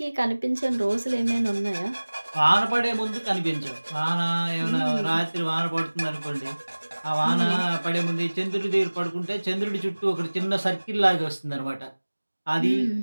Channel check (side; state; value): both; inverted; correlation -1.00